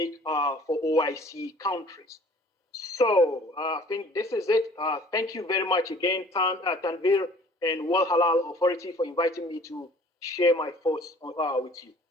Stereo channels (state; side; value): normal; both; correlation 0.52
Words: for OIC countries. So I think this is it. Thank you very much again, Tanvir and World Halal Authority for inviting me to share my thoughts with you.